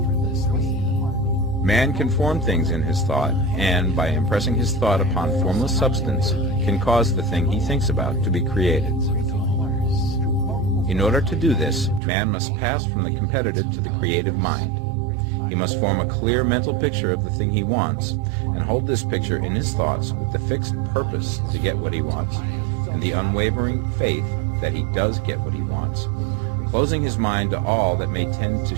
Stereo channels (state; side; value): drops out; left; at 12.0 s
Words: Man can form things in his thought, and by impressing his thought upon formless substance, can cause the thing he thinks about to be created. In order to do this, man must pass from the competitive to the creative mind. He must form a clear mental picture of the thing he wants, and hold this picture in his thoughts with the fixed purpose to get what he wants, and the unwavering faith that he does get what he wants, closing his mind to all that may tend to